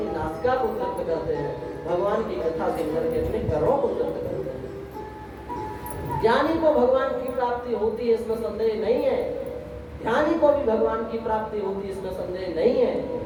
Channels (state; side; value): identical; both; correlation 1.00